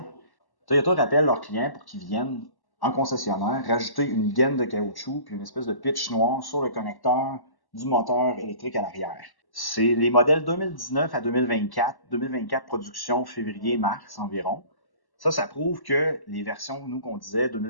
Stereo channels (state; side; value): late; right; 1.1 ms